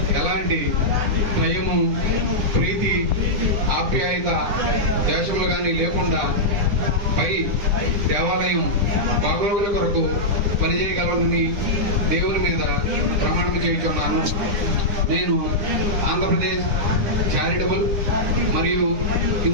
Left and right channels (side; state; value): left; late; 9.8 ms